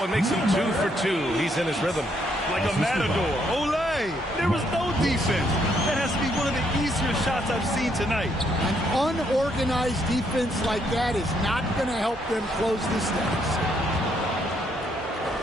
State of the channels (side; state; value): both; normal; correlation 0.72